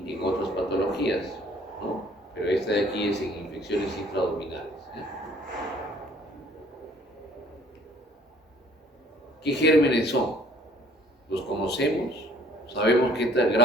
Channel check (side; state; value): both; normal; correlation 0.55